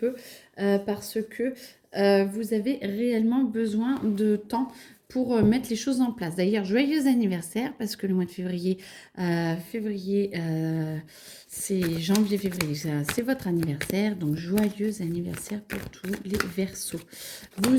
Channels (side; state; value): both; identical; correlation 1.00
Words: parce que vous avez réellement besoin de temps pour mettre les choses en place. D'ailleurs, joyeux anniversaire parce que le mois de février, c'est janvier-février, c'est votre anniversaire. Donc, joyeux anniversaire pour tous les Verseaux.